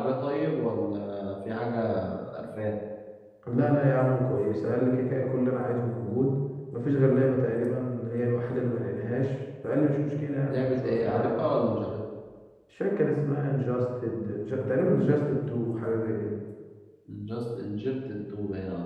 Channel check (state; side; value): identical; both; correlation 1.00